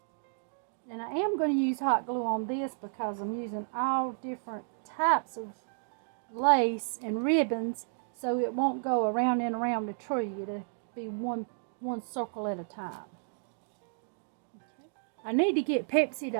And I am going to use hot glue on this because I'm using all different types of lace and ribbons, so it won't go around and around the tree. It'll be one circle at a time. Okay. I need to get Pepsi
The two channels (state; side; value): silent; left; digital silence